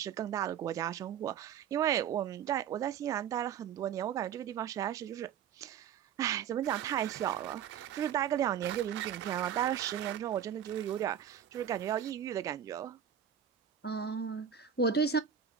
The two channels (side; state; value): left; quieter; 8.7 dB